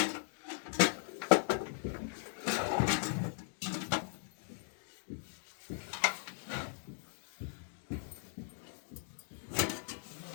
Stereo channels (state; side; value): silent; right; digital silence